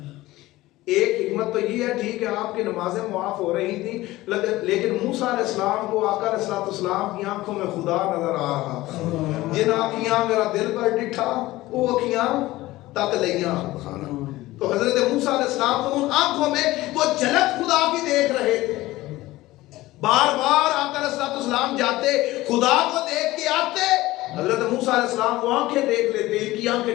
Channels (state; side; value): quieter; right; 17.8 dB